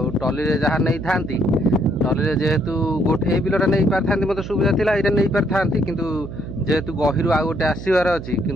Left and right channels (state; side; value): noise; right; hum, 11 dB below the sound